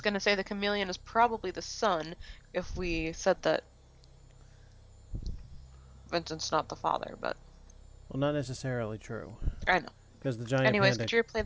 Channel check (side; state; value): both; identical; correlation 1.00